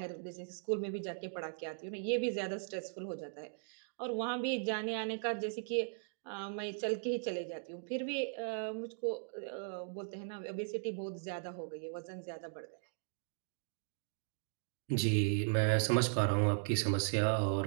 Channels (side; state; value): left; silent; digital silence